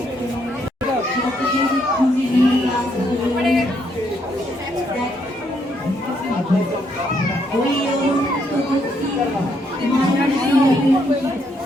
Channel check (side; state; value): both; normal; correlation 0.74